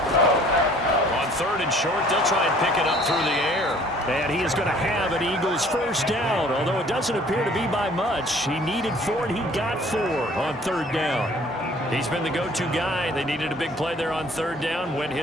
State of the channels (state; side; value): normal; both; correlation 0.55